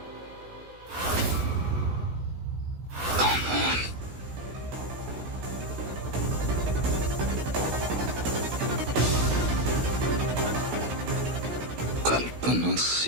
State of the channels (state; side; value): late; left; 16 ms